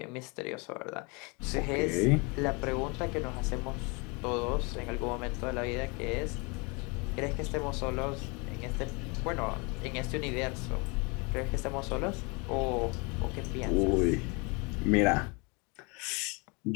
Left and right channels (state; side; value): quieter; right; 29.9 dB